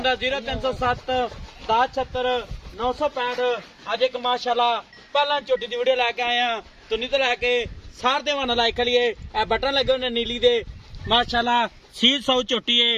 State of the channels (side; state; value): both; identical; correlation 1.00